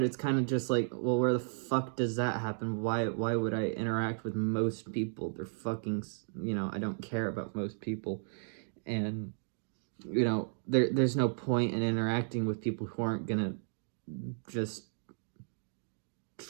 it's kind of just like, well, where the fuck does that happen? Why would I interact with most people? They're fucking, I don't care about most people, and there's no point in interacting with people who aren't gonna just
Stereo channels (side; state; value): left; silent; digital silence